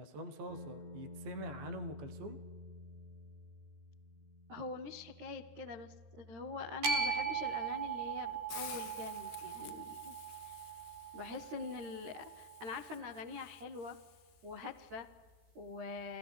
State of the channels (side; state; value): left; late; 13 ms